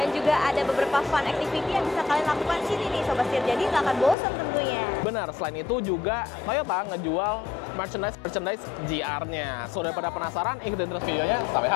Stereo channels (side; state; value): right; drops out; at 4.2 s